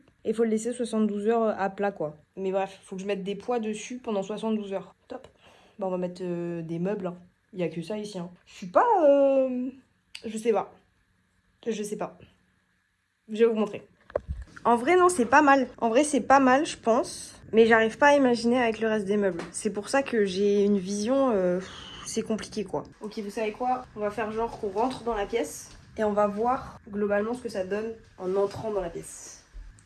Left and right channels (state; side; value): identical; both; correlation 1.00